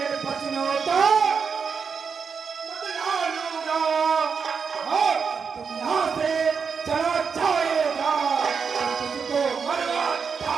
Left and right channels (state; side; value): quieter; left; 5.9 dB